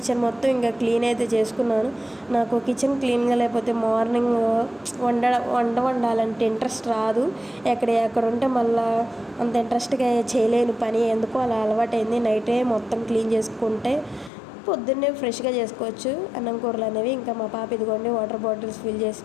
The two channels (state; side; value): drops out; right; at 14.3 s